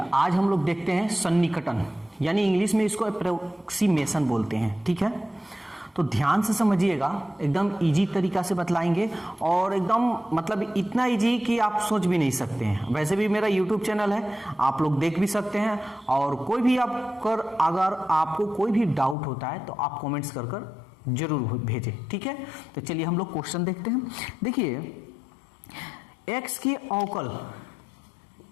आज हम लोग देखते हैं सन्निकटन, यानी इंग्लिश में इसको अप्रोक्सीमेशन बोलते हैं। ठीक है, तो ध्यान से समझिएगा, एकदम इजी तरीका से बतलाएंगे और एकदम मतलब इतना इजी कि आप सोच भी नहीं सकते हैं। वैसे भी मेरा यूट्यूब चैनल है, आप लोग देख भी सकते हैं और कोई भी अगर आपको कोई भी डाउट होता है तो आप कमेंट्स कर जरूर भेजें। ठीक है, तो चलिए हम लोग क्वेश्चन देखते हैं। देखिए x के अवकल,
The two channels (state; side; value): drops out; right; at 19.2 s